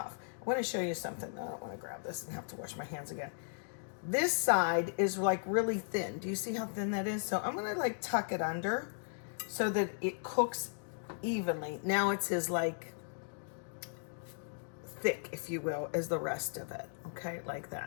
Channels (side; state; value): right; silent; digital silence